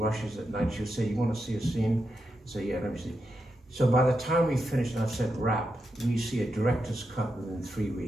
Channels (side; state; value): both; normal; correlation 0.86